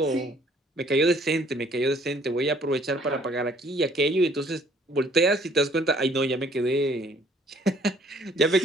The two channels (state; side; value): normal; both; correlation 0.59